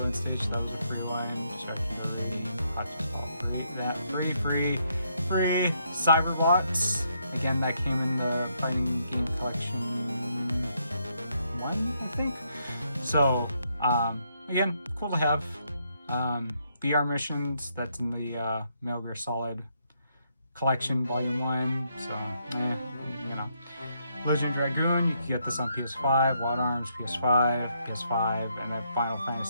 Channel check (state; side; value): inverted; both; correlation -0.75